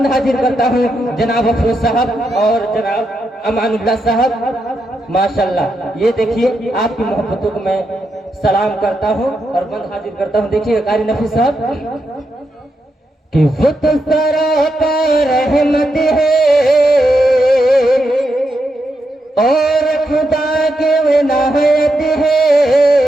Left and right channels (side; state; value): both; normal; correlation 0.84